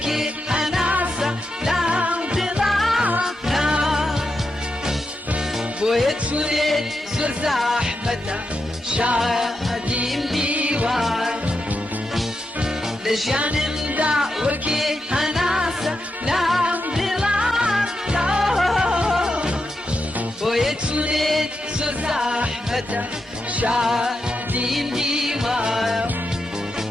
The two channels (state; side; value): normal; both; correlation 0.86